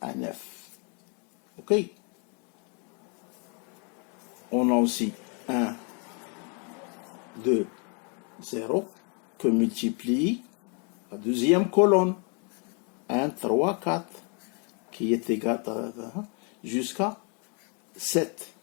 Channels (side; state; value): right; quieter; 36.5 dB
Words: à 9. OK? On a aussi 1, 2, 0 que multiplie la deuxième colonne. 1, 3, 4 qui est égal à jusqu'à 7.